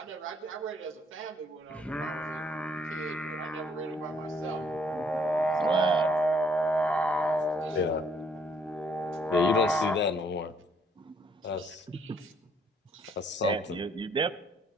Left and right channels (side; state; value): both; normal; correlation 0.66